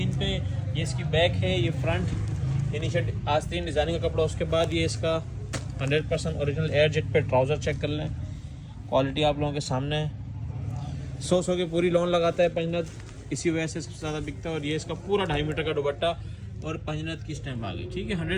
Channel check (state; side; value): identical; both; correlation 1.00